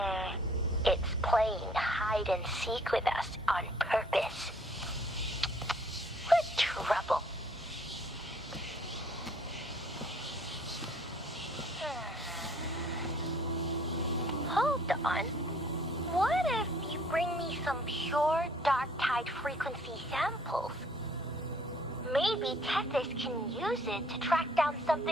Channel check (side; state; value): both; normal; correlation 0.59